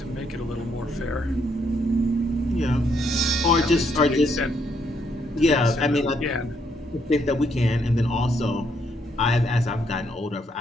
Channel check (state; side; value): normal; both; correlation 0.73